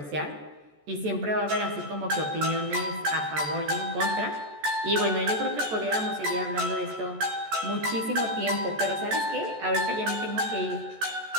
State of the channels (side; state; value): left; late; 14 ms